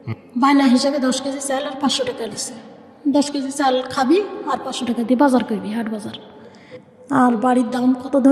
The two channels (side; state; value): both; identical; correlation 1.00